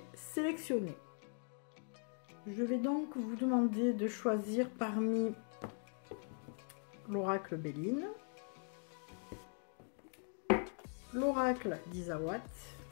sélectionnés. Je vais donc vous demander de choisir parmi l'oracle Béline, l'oracle d'Isawat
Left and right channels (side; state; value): right; silent; 50 dB below the other